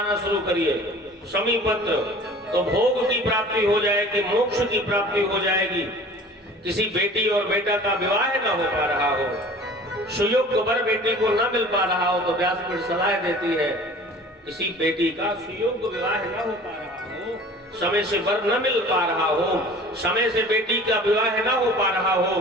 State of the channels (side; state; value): both; normal; correlation 0.44